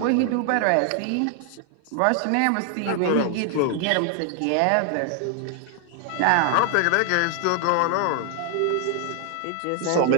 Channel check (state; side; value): different; both; correlation 0.00